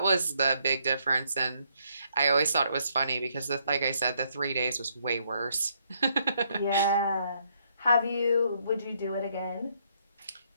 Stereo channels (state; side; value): inverted; both; correlation -0.72